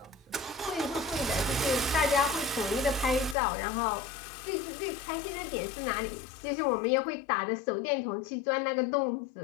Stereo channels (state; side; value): drops out; right; at 3.4 s